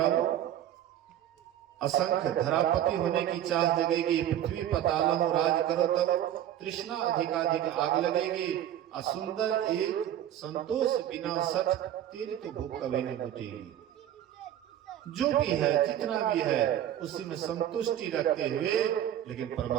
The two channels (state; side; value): quieter; left; 11.4 dB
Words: असंख्य धरापति होने की चाह जगेगी। पृथ्वी पताल राज करो तब तृष्णा अधिकाधिक आग लगेगी। असुंदर एक संतोष बिना सठ, तेरी तो भूख कभी नहीं बुझेगी। जो भी है जितना भी है उसी में संतुष्टि रखते हुए लेकिन